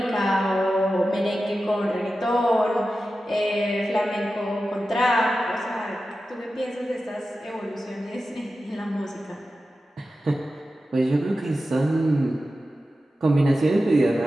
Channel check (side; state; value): both; normal; correlation 0.93